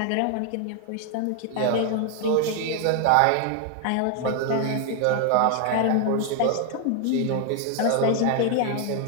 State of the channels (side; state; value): both; different; correlation 0.00